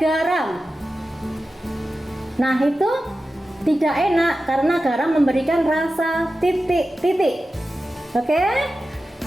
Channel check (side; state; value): both; normal; correlation 0.93